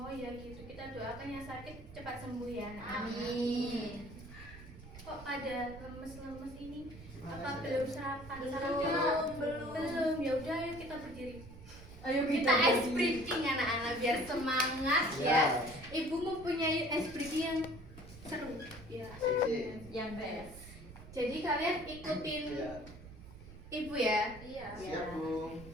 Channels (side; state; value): right; noise; rumble, 16 dB below the sound